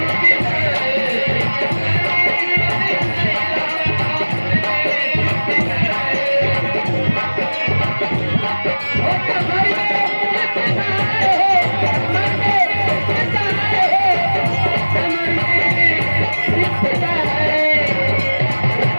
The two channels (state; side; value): inverted; both; correlation -1.00